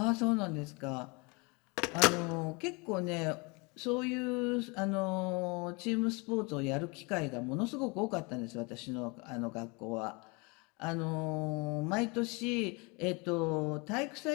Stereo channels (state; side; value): quieter; right; 29.0 dB